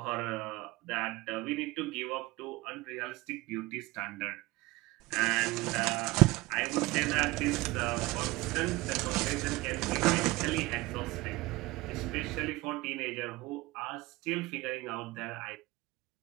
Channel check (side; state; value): left; quieter; 20.7 dB